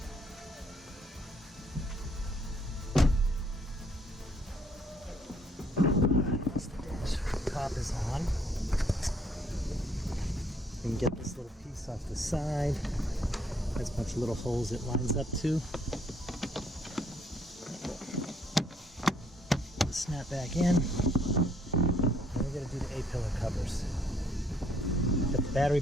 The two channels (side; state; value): both; normal; correlation 0.66